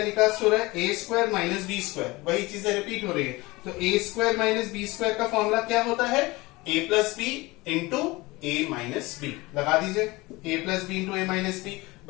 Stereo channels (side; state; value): right; quieter; 22.1 dB